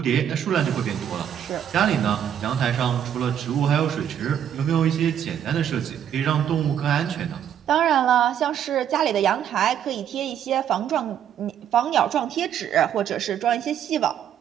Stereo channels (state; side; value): quieter; left; 9.5 dB